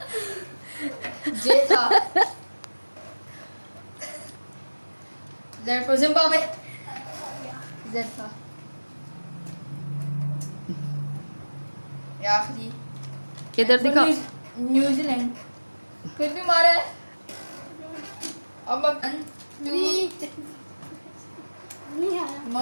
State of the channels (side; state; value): both; inverted; correlation -1.00